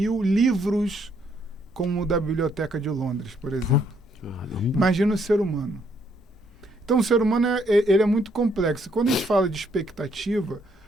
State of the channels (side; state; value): both; normal; correlation 0.71